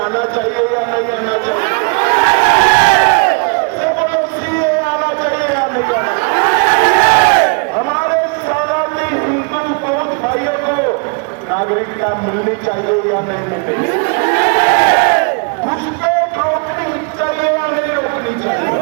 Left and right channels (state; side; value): quieter; left; 34.8 dB